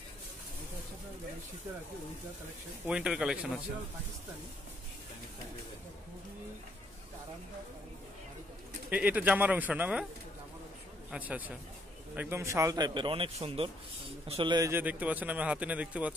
উইন্টার কালেকশন আছে। এটা জামার অংশ না ভাই? আচ্ছা আচ্ছা, একদম শাল টাইপের, অনেক সুন্দর। আসলে এই যে দেখতে পাচ্ছেন, আমি হাতে নিয়ে দেখতে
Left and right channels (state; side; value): normal; both; correlation 0.70